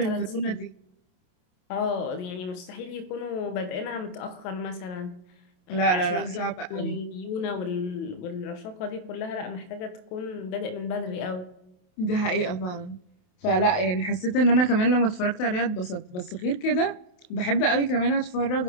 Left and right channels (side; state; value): right; late; 28 ms